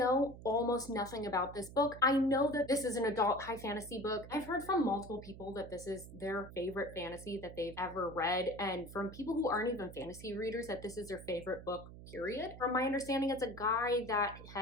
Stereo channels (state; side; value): noise; right; hum, 15 dB below the sound